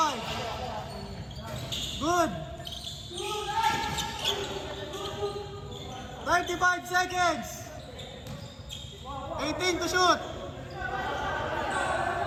Good. 35 seconds. 18 to shoot.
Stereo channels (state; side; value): identical; both; correlation 1.00